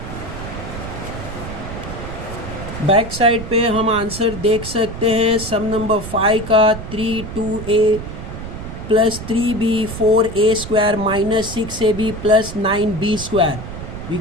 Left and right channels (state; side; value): noise; right; rumble, 9 dB below the sound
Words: बैक साइड पे हम आंसर देख सकते हैं सम नंबर 5 का 3 2a plus 3b 4a square minus 6ab plus 9b square. We